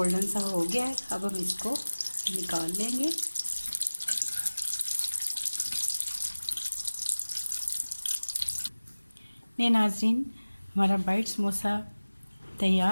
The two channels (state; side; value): inverted; both; correlation -1.00